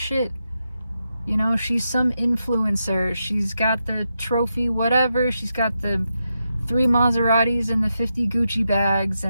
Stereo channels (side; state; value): both; inverted; correlation -0.86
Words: You know, she's some influencer. She's got the trophy, whatever. She's got the 3 Maseratis and the 50 Gucci bags,